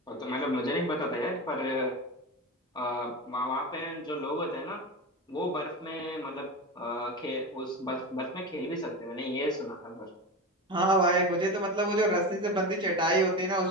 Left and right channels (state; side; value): normal; both; correlation 0.23